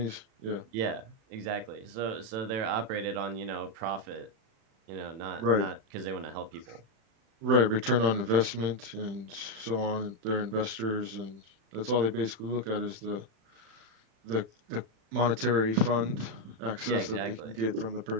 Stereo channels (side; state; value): left; late; 36 ms